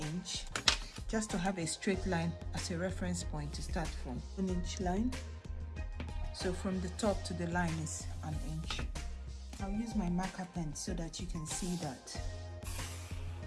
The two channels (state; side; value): identical; both; correlation 1.00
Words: just to have a straight line as a reference point to start from. 1 inch line. So from the top to the line is 1 inch. I'll use my marker pen so that you can see that.